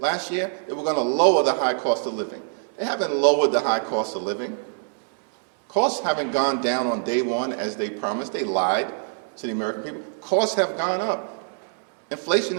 year? They were going to lower the high cost of living. They haven't lowered the high cost of living. Costs haven't gone down on day one as they promised. They lied to the American people. Costs have gone up. Inflation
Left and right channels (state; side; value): silent; left; digital silence